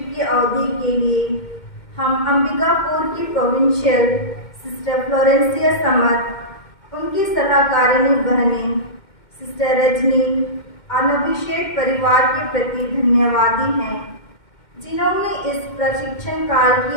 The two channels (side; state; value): right; late; 2.1 ms